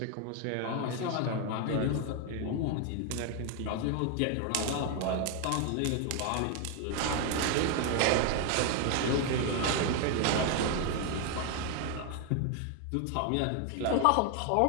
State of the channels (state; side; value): different; both; correlation 0.01